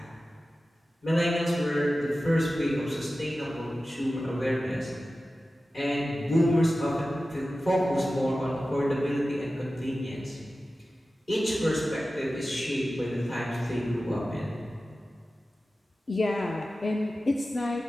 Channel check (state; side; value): normal; both; correlation 0.95